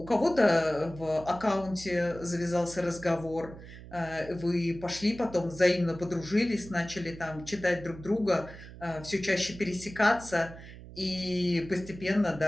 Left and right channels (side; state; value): right; noise; hum, 15 dB below the sound